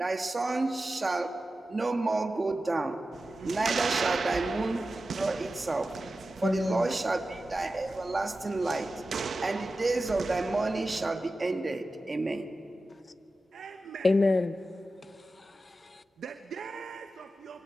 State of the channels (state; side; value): normal; both; correlation 0.93